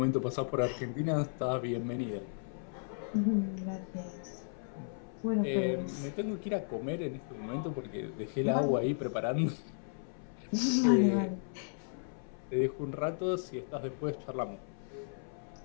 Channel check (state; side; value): silent; right; 55 dB below the other